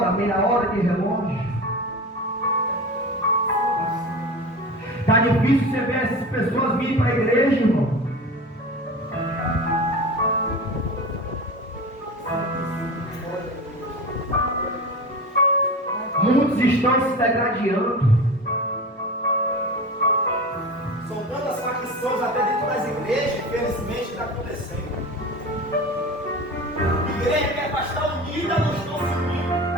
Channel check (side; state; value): both; normal; correlation 0.31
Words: meia hora de relógio. Está difícil você ver essas pessoas virem para a igreja, irmão. Muitos estão se degradando. São tantas facções até dentro das igrejas, infelizmente está acontecendo. Igreja que é para estar unida, não estão se unindo.